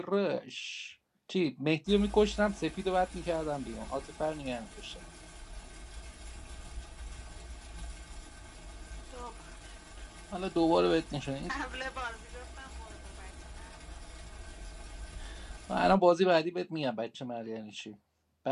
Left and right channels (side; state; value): both; identical; correlation 1.00